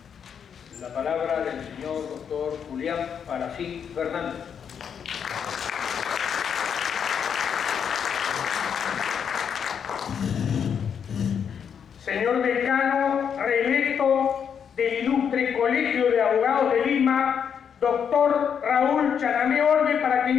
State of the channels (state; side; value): quieter; right; 7.6 dB